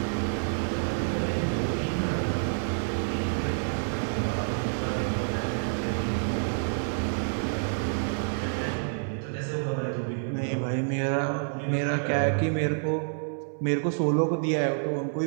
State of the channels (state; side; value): silent; left; 59 dB below the other